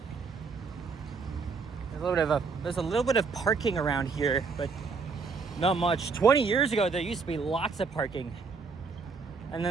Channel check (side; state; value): left; quieter; 4.8 dB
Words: There's a little bit of parking around here, but not much. 20 years ago, there used to be lots of parking, and